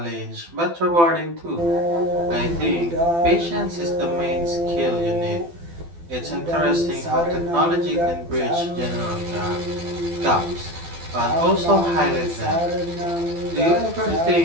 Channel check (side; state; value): left; late; 12 ms